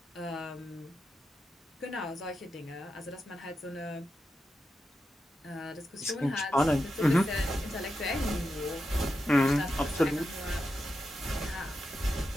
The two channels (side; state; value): both; normal; correlation 0.88